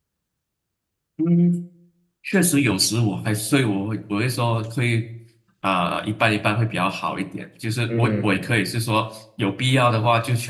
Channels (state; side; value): identical; both; correlation 1.00